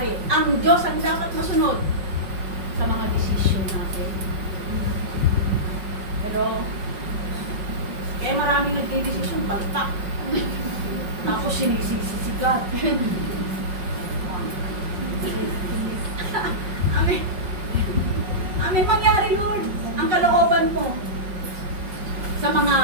ang Diyos ang dapat masunod sa mga desisyon natin? Pero, kaya maraming nagdidesisyon, baltak. Tapos sinisisi si God. Amen. Amen. Mangyari, Lord, ang kalooban mo sa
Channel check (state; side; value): late; left; 5.4 ms